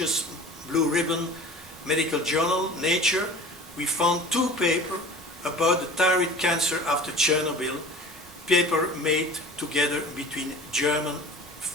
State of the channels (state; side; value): normal; both; correlation 0.41